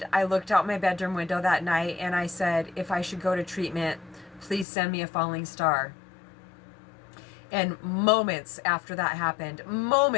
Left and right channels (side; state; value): right; drops out; at 4.7 s